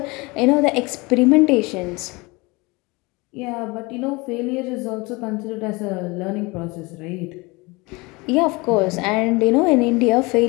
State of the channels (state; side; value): quieter; right; 25.2 dB